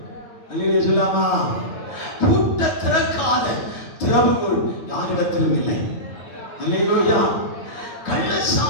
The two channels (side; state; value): right; late; 9.4 ms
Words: அல்லேலூயா சொல்லாமா? பூட்டை திறக்காத திறவுகோல் யாரிடத்திலும் இல்லை. அல்லேலூயா. கள்ள